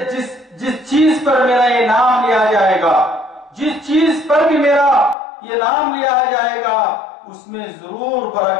چیز پر میرا یہ نام لیا جائے گا، جس چیز پر بھی میرا یہ نام لیا جائے گا اس میں ضرور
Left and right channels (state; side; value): drops out; right; at 5.2 s